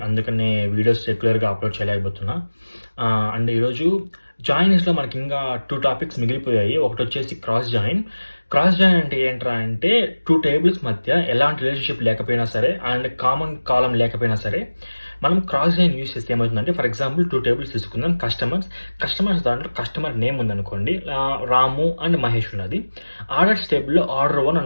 అందుకనే వీడియోస్ రెగ్యులర్‌గా అప్‌లోడ్ చేయలేకపోతున్నా. అండ్ ఈరోజు జాయినింగ్స్‌లో మనకింకా 2 టాపిక్స్ మిగిలిపోయాయి. ఒకటొచ్చేసి క్రాస్ జాయిన్. క్రాస్ జాయిన్ అంటే ఏంట్రా అంటే 2 టేబుల్స్ మధ్య ఎలాంటి రిలేషన్‌షిప్ లేకపోయినా సరే అండ్ కామన్ కాలమ్ లేకపోయినా సరే మనం క్రాస్ జాయిన్ యూజ్ చేస్తే ఏమవుతుందంటే ఫర్ ఎగ్జాంపుల్ 2 టేబుల్స్ తీసుకుందాం. కస్టమర్స్ దాంట్లో కస్టమర్ నేమ్ ఉందనుకోండి. రాము అండ్ మహేష్ ఉన్నది. ఆర్డర్స్ టేబుల్‌లో ఆర్డర్ 1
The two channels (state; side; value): inverted; both; correlation -1.00